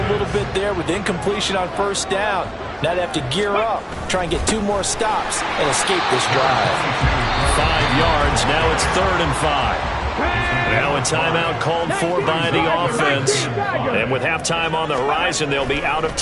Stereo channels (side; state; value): both; identical; correlation 1.00